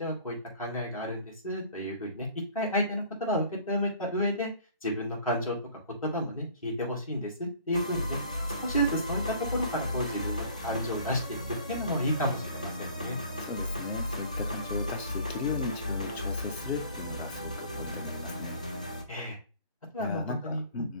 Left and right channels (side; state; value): both; inverted; correlation -0.51